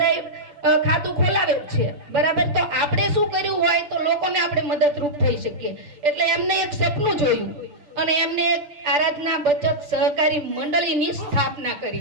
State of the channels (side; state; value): left; late; 6.8 ms